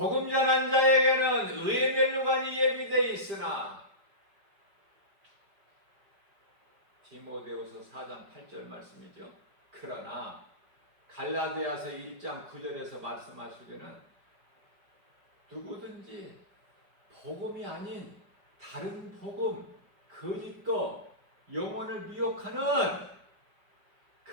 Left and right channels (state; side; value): late; left; 5.1 ms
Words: 전한 자에게는 의의 멸류관이 예비되어 있으나 디모데후서 4장 8절 말씀이죠. 그러나 갈라디아서 1장 9절에서 말씀하시기는 누구든지 복음이 아닌 다른 복음, 거짓거, 영혼을 미혹하는